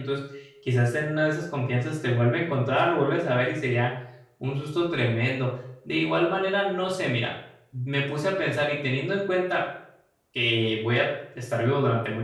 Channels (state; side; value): identical; both; correlation 1.00